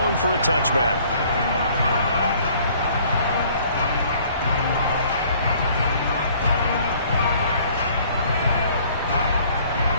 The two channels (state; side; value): inverted; both; correlation -0.57